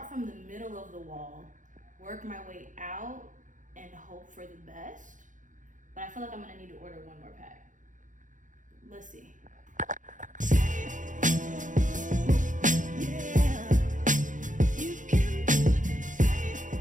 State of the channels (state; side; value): late; left; 0.37 ms